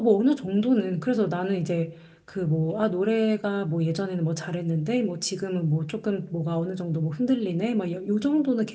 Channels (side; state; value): both; identical; correlation 1.00